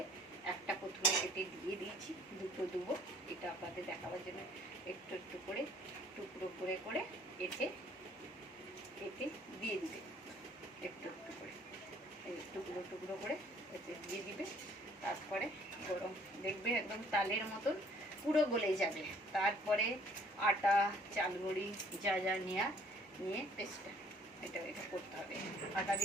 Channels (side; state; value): both; normal; correlation 0.59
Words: একটা প্রথমে কেটে দিয়ে দিয়েছি, দুটো দেবো, এটা আপনাদের দেখাবার জন্য একটু একটু করে টুকরো করে করে কেটে কেটে দিয়ে দিবে, একটু একটু করে টুকরো টুকরো করে এতে দিয়ে দিবে। তারপরে গরম দেখবে একদম তালের মতন পুরো গলে যাবে। তারপরে আটা, চালগুড়ি যা যা নিয়ে পেস্টটা এটা করতে হবে। আটা